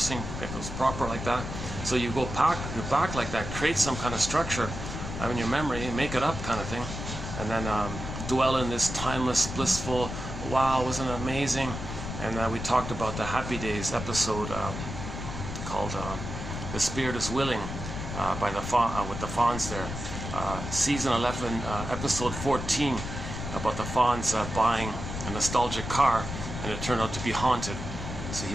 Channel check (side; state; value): left; noise; rumble, 7 dB below the sound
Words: if it was proper like that. So you go back like that, create some kind of structure in your memory, make it up kind of thing, and then dwell in this timeless, blissful, wow, wasn't it amazing? And we talked about the Happy Days episode called The Spirit is Willing by with the Fawns there. Season 11, episode 14, about the Fawns buying a nostalgic car, and it turned out to be haunted. So he